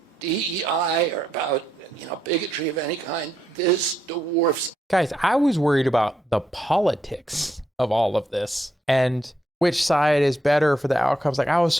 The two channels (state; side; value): normal; both; correlation 0.79